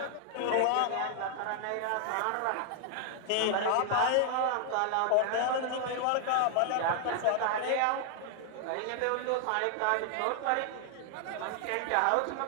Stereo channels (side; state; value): both; different; correlation 0.00